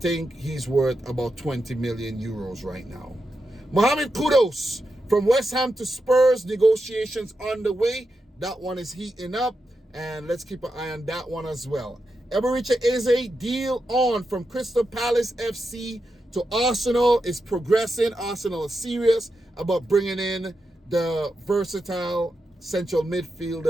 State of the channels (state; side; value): normal; both; correlation 0.87